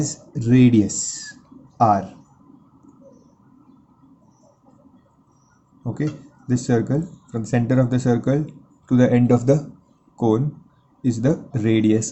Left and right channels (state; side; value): identical; both; correlation 1.00